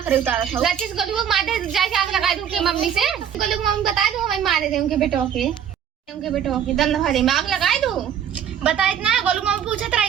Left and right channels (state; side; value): quieter; left; 8.9 dB